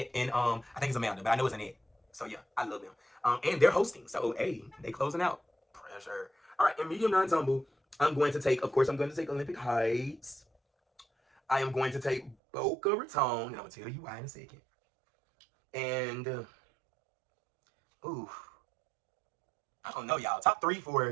and I think it's Amanda, but I know it's Annette. So yeah, I love them. And they're hosting, so hey, they closing out. Pressure. All right, in medium non-tumble, I'm going to take, of course, I'm going to take Olympic Heights. I am going to take Boca Raton, and I'm gonna tell you why in a second. And I don't know, y'all. Top 3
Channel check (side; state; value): left; drops out; at 12.4 s